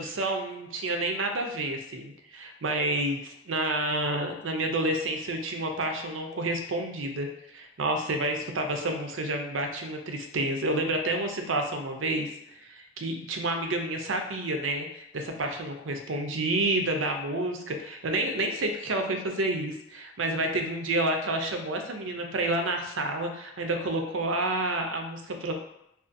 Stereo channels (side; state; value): both; normal; correlation 0.05